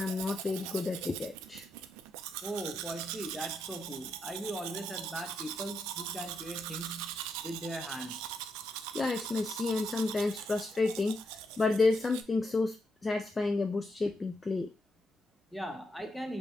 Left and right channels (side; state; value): both; normal; correlation 0.82